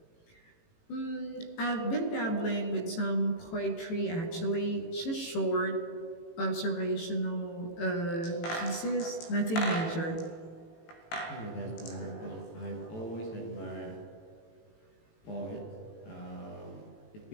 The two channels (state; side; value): late; right; 18 ms